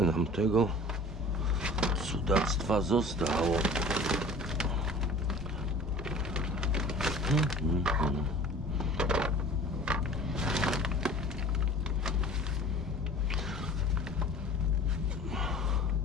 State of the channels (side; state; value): both; normal; correlation 0.43